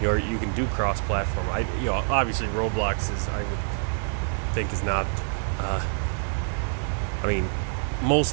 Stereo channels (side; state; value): left; silent; 60 dB below the other